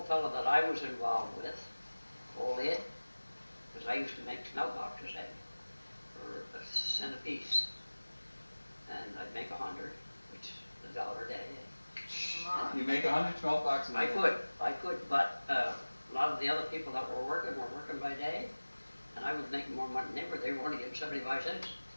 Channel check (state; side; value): inverted; both; correlation -1.00